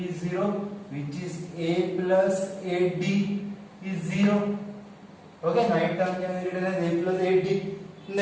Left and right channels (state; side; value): identical; both; correlation 1.00